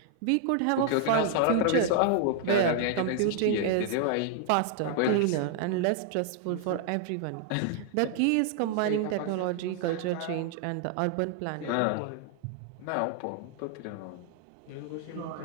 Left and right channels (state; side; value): different; both; correlation 0.00